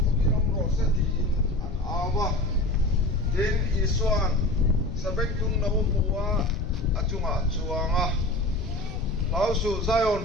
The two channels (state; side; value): noise; left; rumble, 8 dB below the sound